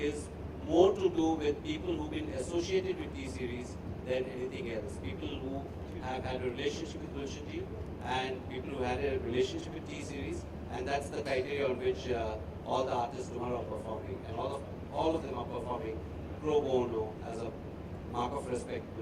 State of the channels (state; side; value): identical; both; correlation 1.00